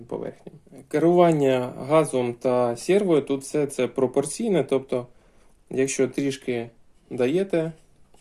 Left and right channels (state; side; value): identical; both; correlation 1.00